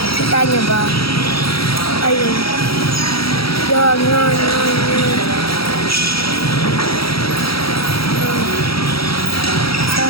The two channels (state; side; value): late; right; 0.75 ms